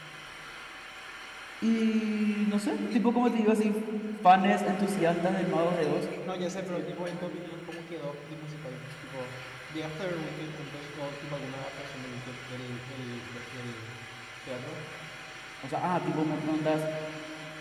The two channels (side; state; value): both; identical; correlation 1.00